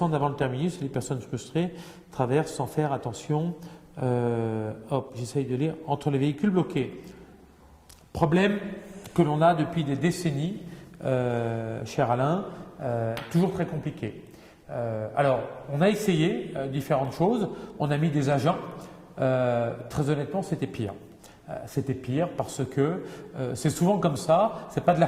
avant le terminus et les personnes frustrées traversent sans faire attention. J'essaye de lire. Entre les véhicules bloqués. Problème que l'on a depuis des décennies, cher Alain, toujours très compliqué. Alors, on a essayé différentes choses, on a mis des agents, très honnêtement, c'était pire. C'était pire parce que c'est souvent comme ça, c'est pas de la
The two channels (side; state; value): both; identical; correlation 1.00